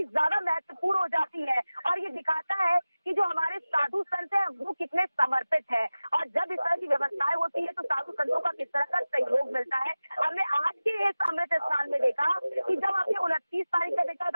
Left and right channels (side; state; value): both; inverted; correlation -0.97